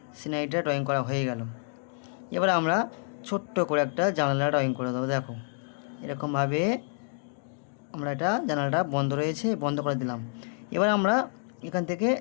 সিনারিটা ড্রয়িং করা হয়ে গেল। এবার আমরা ছোট্ট করে একটা জানালা ড্রয়িং করে দেবো। দেখো, এরকমভাবে আমরা এটা জানালাটা বন্ধ রয়েছে, বন্ধ করে দিলাম। এবার আমরা এখান থেকে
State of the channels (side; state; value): right; silent; digital silence